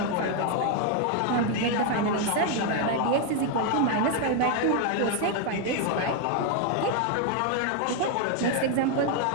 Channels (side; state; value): both; different; correlation 0.01